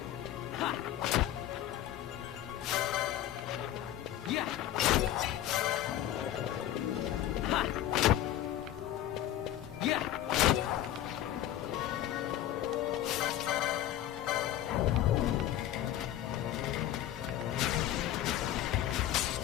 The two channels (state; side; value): quieter; right; 12.4 dB